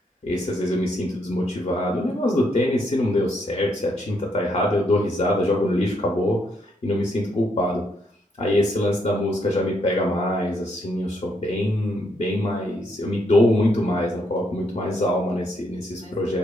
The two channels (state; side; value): normal; both; correlation 0.75